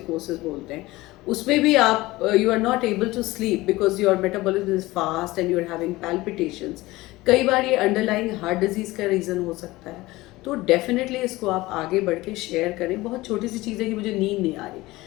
बोलते हैं। उसमें भी आप you are not able to sleep because your metabolism is fast and you are having palpitations. कई बार ये अंडरलाइंग हार्ट डिजीज़ का रीज़न हो सकता है। तो डेफिनेटली इसको आप आगे बढ़ के शेयर करें. बहुत छोटी सी चीज़ है कि मुझे नींद नहीं आ रही,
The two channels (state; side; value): quieter; right; 19.4 dB